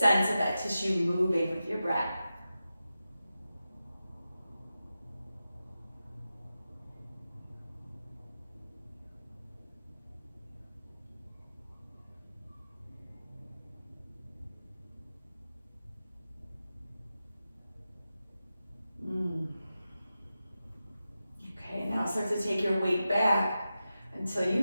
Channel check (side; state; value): both; inverted; correlation -0.92